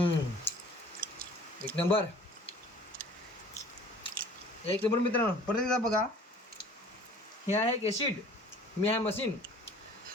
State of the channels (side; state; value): both; normal; correlation 0.49